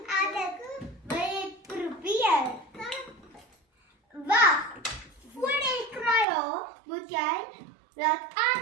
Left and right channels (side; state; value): left; drops out; at 6.2 s